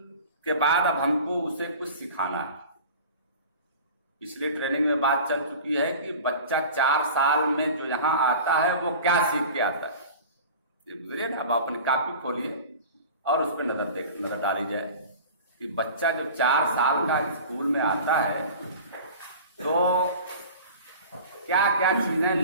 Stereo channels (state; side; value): inverted; both; correlation -0.39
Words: के बाद अब हमको उसे कुछ सिखाना है। पिछली ट्रेनिंग में बात चल चुकी है कि बच्चा 4 साल में जो यहाँ आता है वो क्या सीख के आता है, ये गुजरिए ना। अब अपनी कापी खोलिए और उस पर नजर डाली जाए कि बच्चा जब 4 साल का स्कूल में आता है तो क्या क्या चीजें